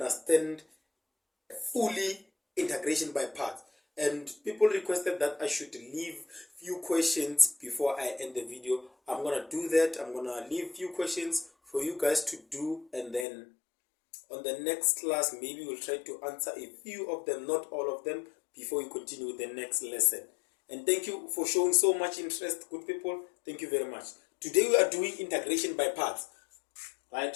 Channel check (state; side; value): drops out; right; at 13.2 s